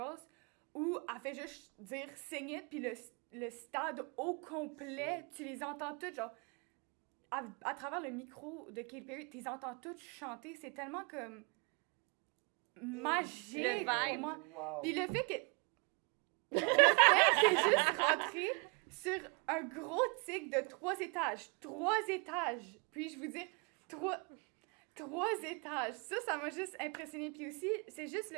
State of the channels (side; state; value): left; quieter; 33.3 dB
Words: où elle fait juste dire « sing it », puis le stade au complet, tu les entends toutes, genre... À travers le micro de Katy Perry, tu les entends toutes chanter. C'est tellement comme... magique pour moi. Wow. Puis le fait que juste rentrer sur un gros tic de 3 étages. 3 étages. Puis-je vous dire, 3 étages. Ça m'a juste impressionné. Puis aussi, c'est juste